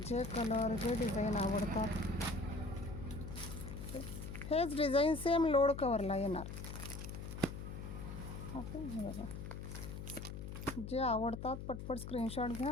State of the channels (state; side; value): noise; left; hum, 8 dB below the sound